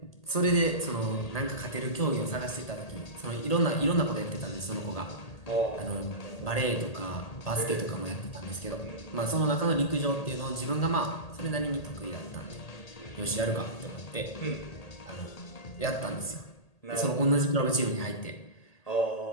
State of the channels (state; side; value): late; right; 1.8 ms